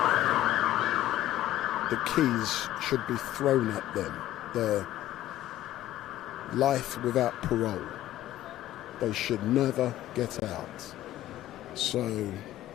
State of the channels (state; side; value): quieter; right; 13.9 dB